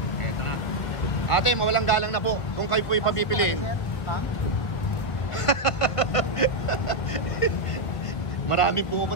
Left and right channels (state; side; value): late; right; 1.5 ms